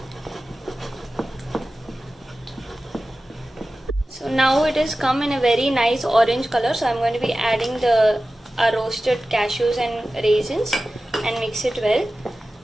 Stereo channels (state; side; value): normal; both; correlation 0.95